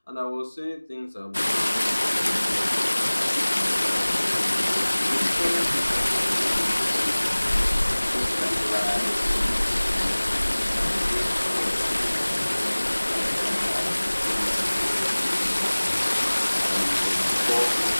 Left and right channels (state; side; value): inverted; both; correlation -1.00